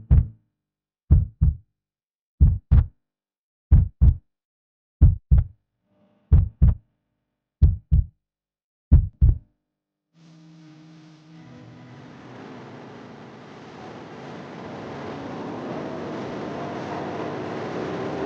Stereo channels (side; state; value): both; identical; correlation 1.00